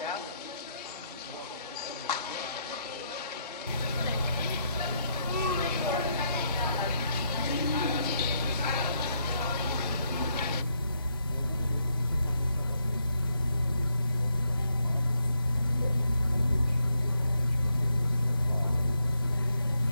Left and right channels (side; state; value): both; inverted; correlation -0.77